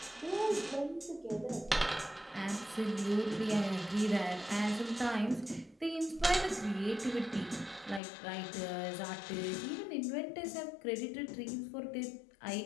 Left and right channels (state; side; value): drops out; right; at 8.0 s